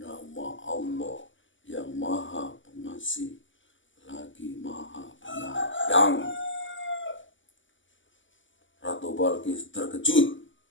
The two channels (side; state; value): right; late; 0.55 ms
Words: Allah yang Maha Pengasih lagi Maha Penyayang. Ratu Balkis terkejut.